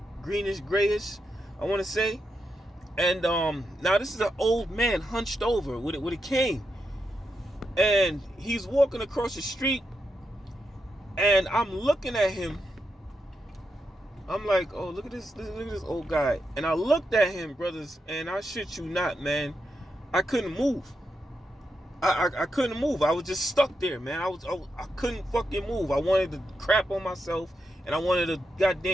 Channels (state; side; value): normal; both; correlation 0.85